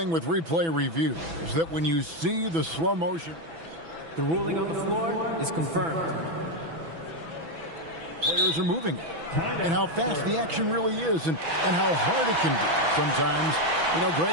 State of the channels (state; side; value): late; left; 6.1 ms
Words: with replay review is that when you see the slow motion, the ruling on the floor is confirmed. Players are moving, and how fast the action really is, and how hard it can be sometimes,